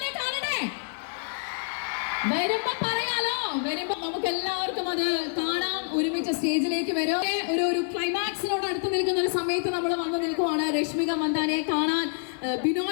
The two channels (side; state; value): right; silent; 60 dB below the other